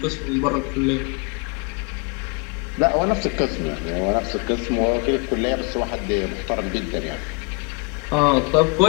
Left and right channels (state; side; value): quieter; right; 33.4 dB